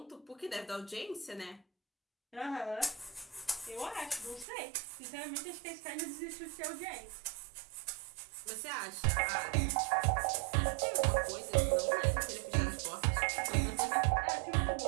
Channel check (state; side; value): drops out; left; at 4.5 s